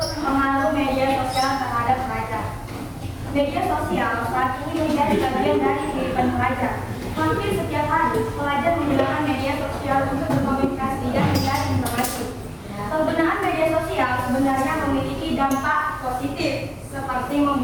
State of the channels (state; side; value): identical; both; correlation 1.00